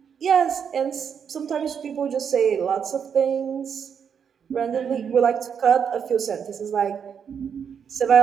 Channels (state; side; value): quieter; left; 7.4 dB